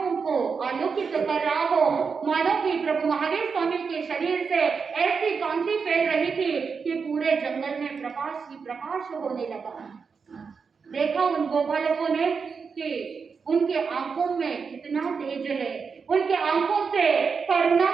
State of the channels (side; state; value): left; quieter; 5.5 dB